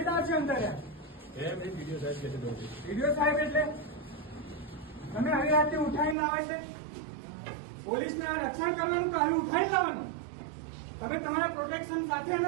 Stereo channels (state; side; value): drops out; left; at 6.2 s